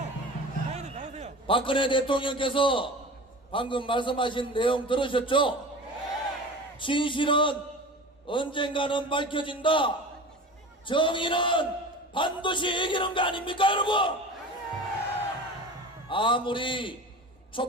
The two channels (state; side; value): normal; both; correlation 0.35